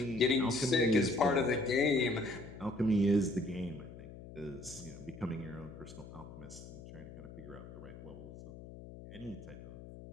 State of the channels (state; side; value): noise; left; hum, 14 dB below the sound